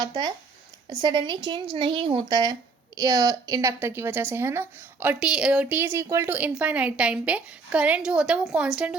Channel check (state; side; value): quieter; left; 4.5 dB